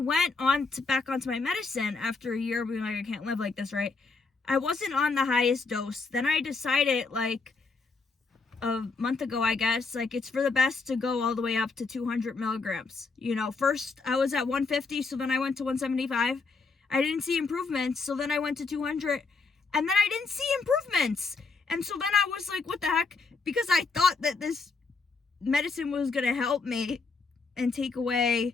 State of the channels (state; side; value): quieter; right; 4.3 dB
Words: back onto my medicine after a year being like, I can't live like this, right? I wasn't on the highest dose. Then I decided like a month ago, I guess, like it's for the best to go all the way up to 200 milligrams. First I was at 150, so then I went to 175. I didn't see improvements, so then I went to 200, and then I didn't see improvements. And so then I was like, what the heck? Because I thought that this medicine was going to help me and take away